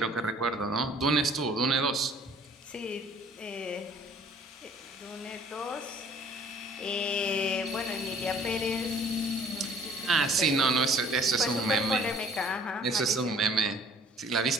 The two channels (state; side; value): normal; both; correlation 0.55